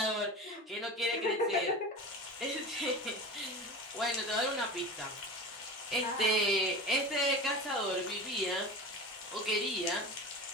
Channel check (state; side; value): normal; both; correlation 0.31